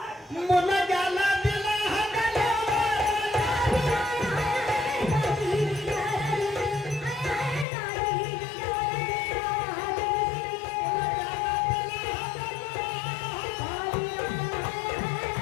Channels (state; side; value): drops out; right; at 7.7 s